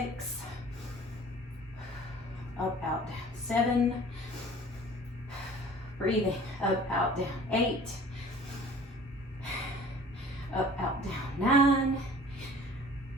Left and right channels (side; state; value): both; normal; correlation 0.47